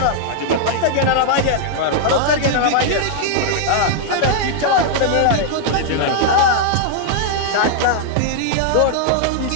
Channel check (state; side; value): different; both; correlation -0.01